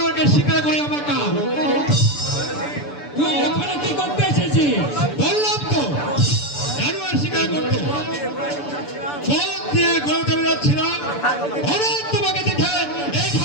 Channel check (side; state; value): right; late; 6.9 ms